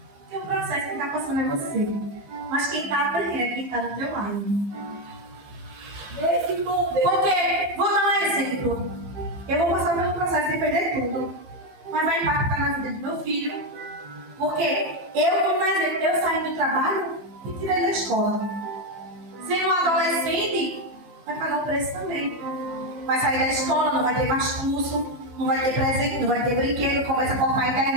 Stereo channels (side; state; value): left; late; 15 ms